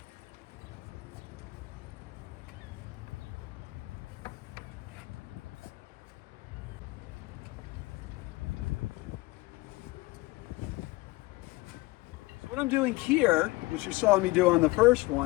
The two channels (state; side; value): quieter; right; 21.7 dB